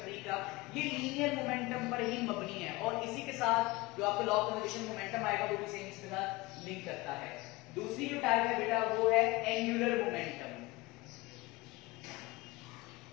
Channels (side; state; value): right; quieter; 22.0 dB